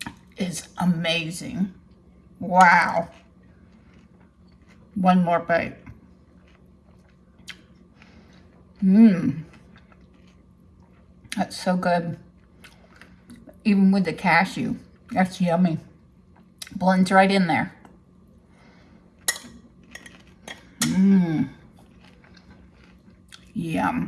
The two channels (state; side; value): identical; both; correlation 1.00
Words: is amazing. Wow. One more bite. Mmm. That's so good. Even with the cashew, that's yummy. Blends right in there. Mmm.